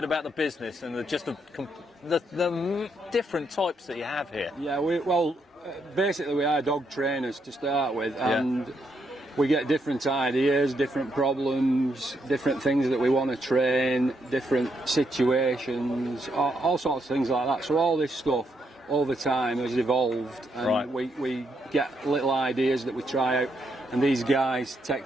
about the business and the different types that you have here. Yeah, basically we are dog trainers to start with, and we get different ideas, different problems, different things that we want to train, different situations, all sorts of things like that. So all this stuff over time has evolved, and we get little ideas that we try out, and these guys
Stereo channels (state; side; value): normal; both; correlation 0.77